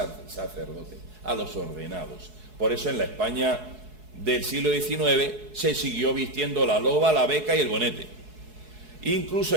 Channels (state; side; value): late; left; 4.7 ms